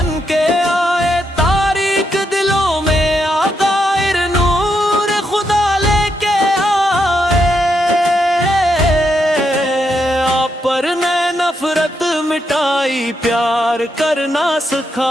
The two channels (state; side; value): normal; both; correlation 0.81